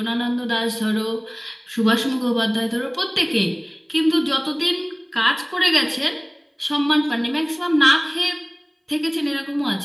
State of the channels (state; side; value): identical; both; correlation 1.00